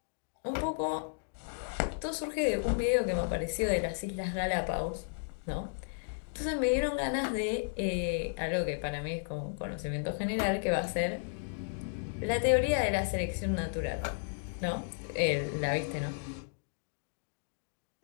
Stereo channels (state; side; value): silent; right; digital silence